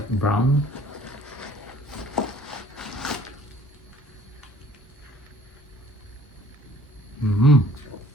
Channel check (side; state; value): both; normal; correlation 0.54